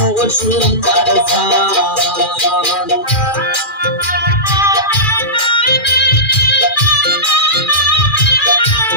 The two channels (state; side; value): late; right; 2.4 ms